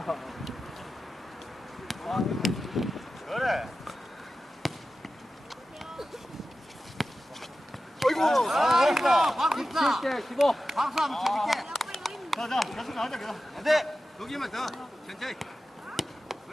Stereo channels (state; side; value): normal; both; correlation 0.93